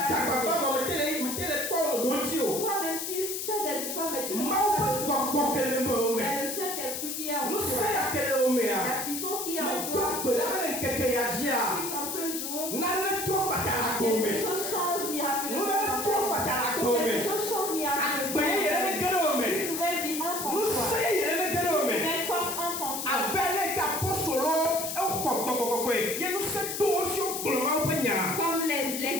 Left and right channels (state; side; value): noise; left; hiss, 4 dB below the sound